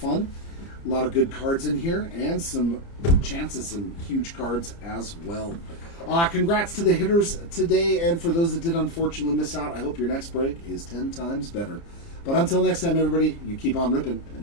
A lot of good cards in here, and some chances, some huge cards as well. Congrats to the hitters today, and for those that did unfortunately miss out, I hope your next break is 10 times better. But until next time, everybody, you keep on ripping,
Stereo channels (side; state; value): right; late; 30 ms